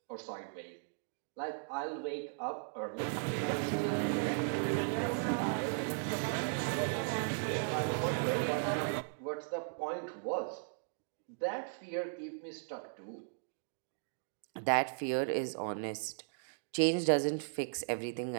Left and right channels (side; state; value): left; silent; digital silence